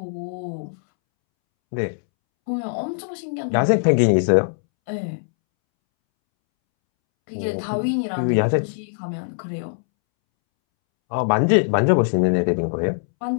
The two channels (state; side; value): silent; right; 64 dB below the other